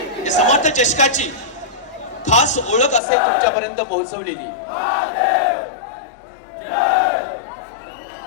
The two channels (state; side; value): drops out; right; at 3.0 s